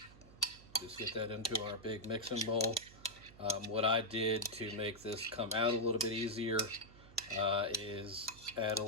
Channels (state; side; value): noise; right; hum, 20 dB below the sound